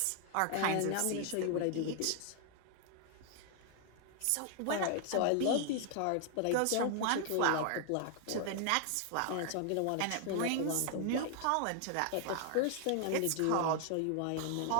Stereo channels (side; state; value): both; different; correlation 0.00